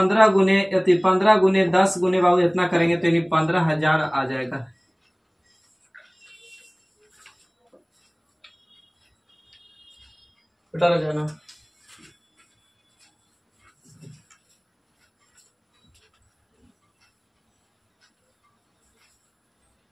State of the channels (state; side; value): identical; both; correlation 1.00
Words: गुने 10 गुने बाबू इतना करेंगे तो यानी 15,000 आ जाएगा। बेटा रह जाना।